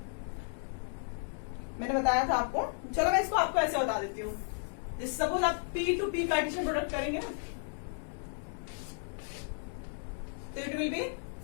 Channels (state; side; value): silent; right; 55 dB below the other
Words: मैंने बताया था आपको। चलो मैं इसको आपको ऐसे बता देती हूँ। सपोज आप P two P Cartesian product करेंगे ना, तो it will be